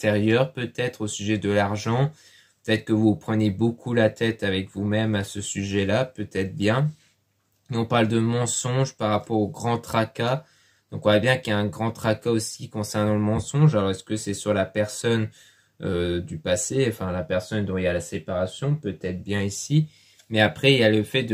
peut-être au sujet de l'argent? Peut-être que vous prenez beaucoup la tête avec vous-même à ce sujet-là, peut-être bien. Et on parle de mensonge par rapport au grand tracas. Donc on voit bien qu'il y a un grand tracas aussi concernant le mensonge. Alors est-ce que c'est sur la personne du passé, enfin la personne dont il y a la séparation, peut-être bien ici. Mais après il y a le fait de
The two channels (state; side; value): identical; both; correlation 1.00